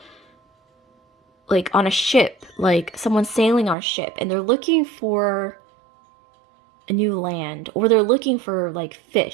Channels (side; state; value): left; drops out; at 3.8 s